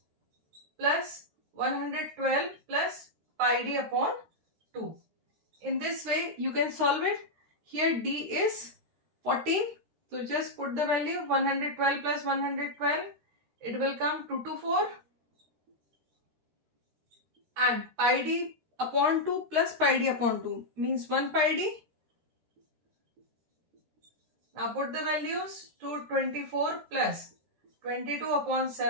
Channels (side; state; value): left; late; 13 ms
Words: plus 112 plus pi d upon 2. In this way you can solve it. Here d is 14. So just put the value 112 plus 112. It will come 224. And pi d upon 2 plus pi d upon 2 means 1 pi d. Now put the values. 224 plus 22 upon